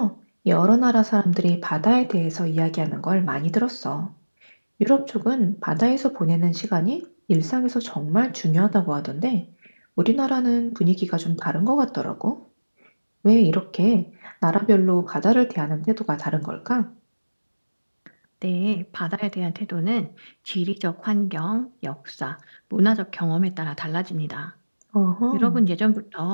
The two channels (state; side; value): inverted; both; correlation -1.00